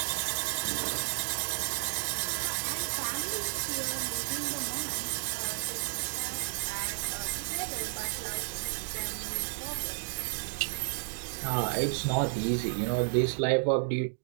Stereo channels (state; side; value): silent; left; digital silence